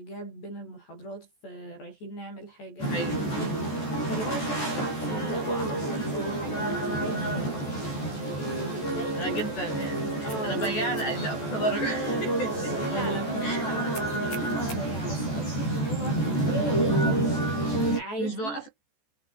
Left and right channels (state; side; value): late; right; 14 ms